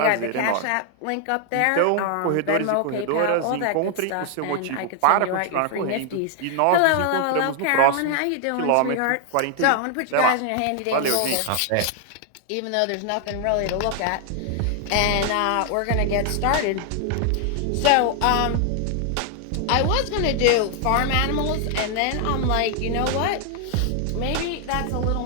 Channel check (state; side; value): different; both; correlation 0.00